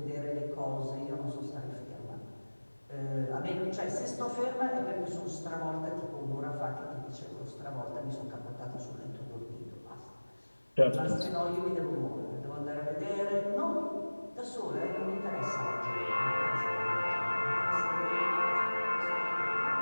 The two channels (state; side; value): inverted; both; correlation -1.00